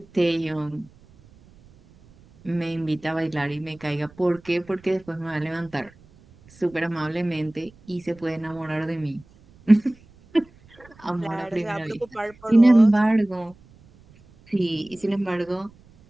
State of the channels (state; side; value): noise; right; rumble, 27 dB below the sound